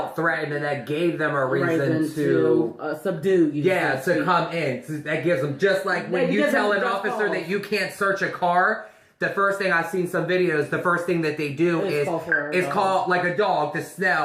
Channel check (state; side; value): identical; both; correlation 1.00